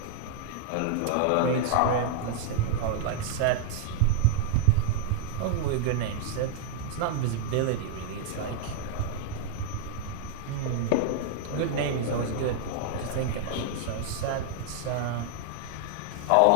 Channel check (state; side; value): different; both; correlation -0.01